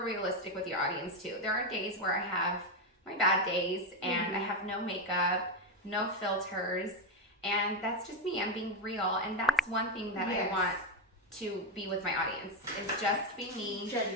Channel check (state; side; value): normal; both; correlation 0.10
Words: realistic with your audience too. There are days where I have my bad days, and I have no makeup, no filters, and that's just me. I'm being real, and that's one thing that I want to be with my audience, is just be me,